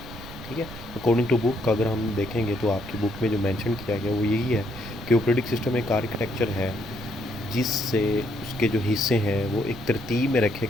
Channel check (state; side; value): noise; right; rumble, 15 dB below the sound